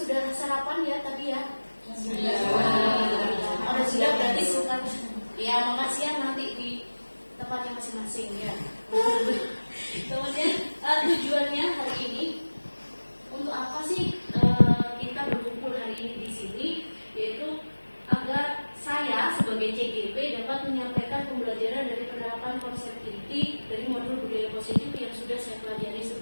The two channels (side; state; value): both; inverted; correlation -1.00